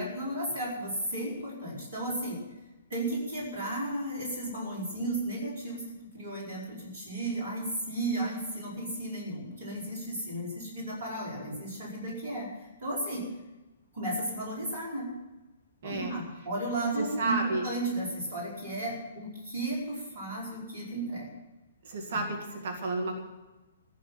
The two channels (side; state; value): both; inverted; correlation -0.46